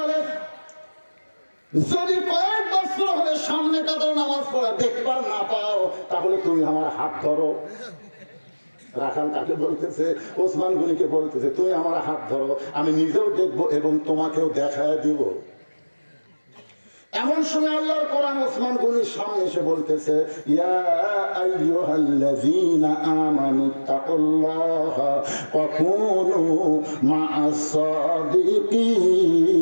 যদি কয়েক বছর হলে সামনে কাতারে নামাজ পড়া দেখবার না পাও তাহলে তুমি আমার হাত ধরো রাখাল তাকে বলতেছে ওসমান গনিকে বলতেছে তুমি আমার হাত ধরো আমি নিজেও দেখবো এবং তোমাকেও দেখায় দিব এমন সময় আল্লাহর কোরআন ওসমান গনির সামনে এসে বলতেছে ইয়া আইয়ুহাল্লাযীনা আমানুত্তাকুল্লাহা ওয়া কুনু মা'আস সাদিকিন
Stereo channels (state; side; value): inverted; both; correlation -1.00